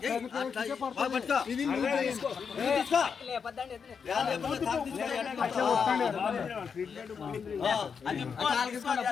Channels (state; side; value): quieter; right; 6.2 dB